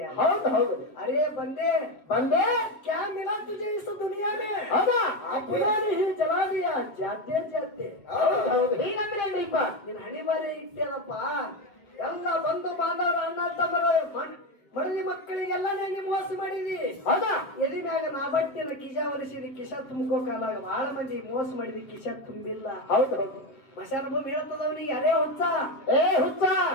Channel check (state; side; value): late; right; 7.5 ms